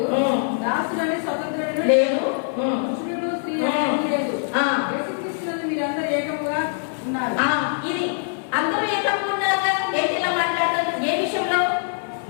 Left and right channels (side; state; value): right; silent; digital silence